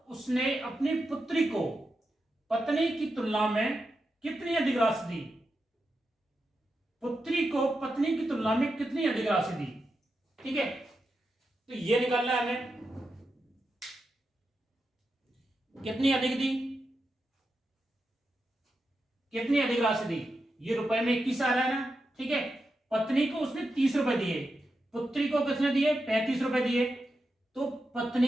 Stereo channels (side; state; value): both; normal; correlation 0.88